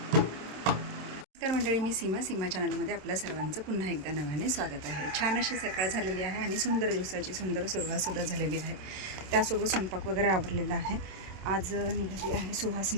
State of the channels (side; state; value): left; late; 27 ms